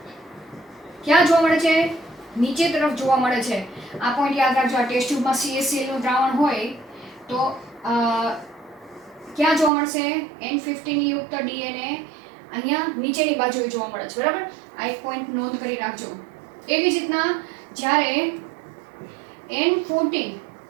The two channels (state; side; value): drops out; left; at 9.7 s